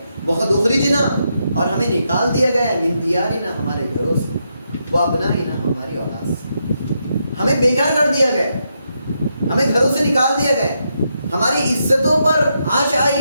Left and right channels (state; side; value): inverted; both; correlation -0.82